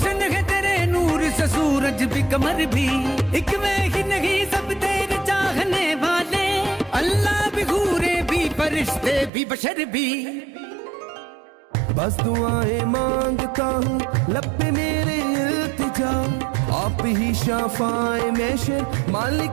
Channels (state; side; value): drops out; left; at 9.3 s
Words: है तेरे नूर से सूरज भी कमर भी, एक मैं ही नहीं सब तेरे चाहने वाले, अल्लाह भी घूरे भी फरिश्ते भी बशर भी। बस दुआएं मांगता हूँ लब पे मेरे इल्तिजा, आप ही शाफाए महशर